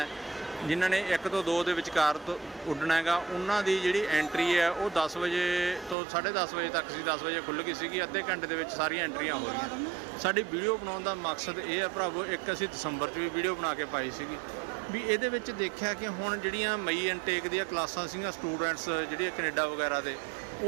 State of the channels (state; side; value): drops out; left; at 6.0 s